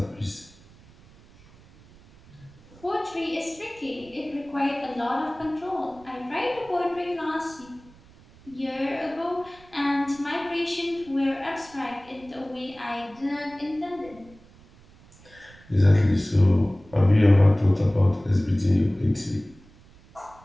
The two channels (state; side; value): noise; right; rumble, 25 dB below the sound